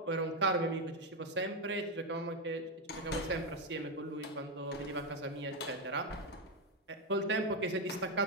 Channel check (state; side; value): normal; both; correlation 0.06